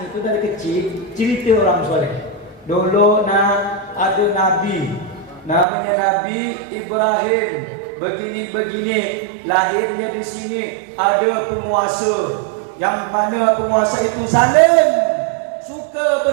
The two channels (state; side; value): drops out; left; at 5.7 s